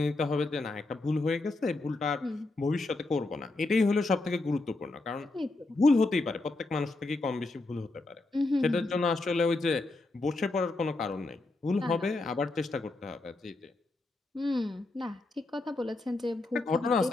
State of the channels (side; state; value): right; quieter; 3.1 dB